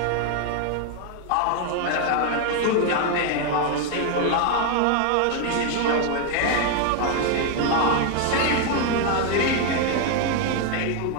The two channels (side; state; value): both; different; correlation 0.01